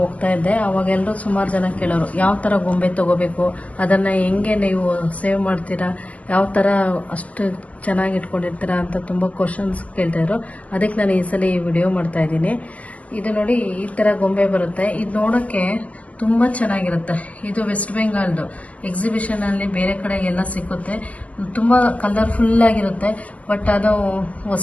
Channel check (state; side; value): late; right; 0.067 ms